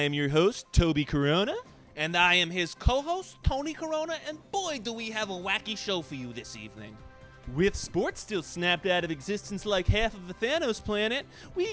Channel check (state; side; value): identical; both; correlation 1.00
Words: your host, Toby Corona. And I am his co-host, Tony Corona, and boy, do we have a wacky show for you this evening. With sports still snapped out of existence like half of the Thanos planet, we